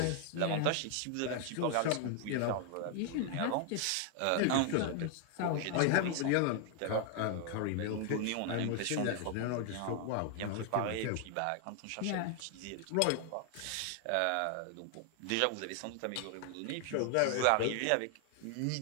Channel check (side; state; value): both; different; correlation 0.00